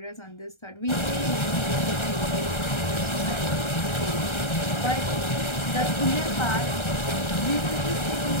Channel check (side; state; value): right; late; 1.3 ms